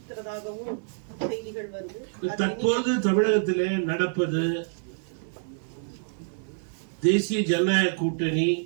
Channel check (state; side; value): silent; left; 60 dB below the other